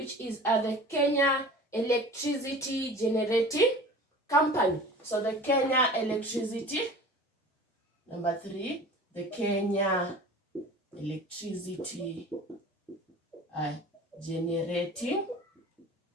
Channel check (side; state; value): both; normal; correlation 0.41